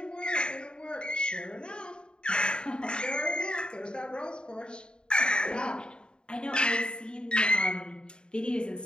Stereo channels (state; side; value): late; right; 0.050 ms